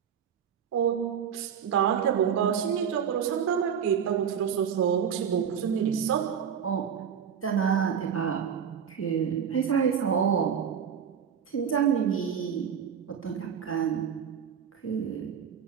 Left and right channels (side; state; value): left; quieter; 7.8 dB